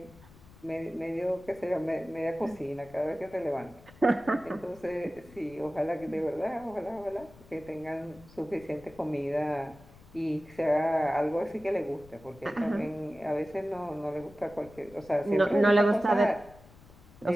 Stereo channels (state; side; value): noise; left; rumble, 23 dB below the sound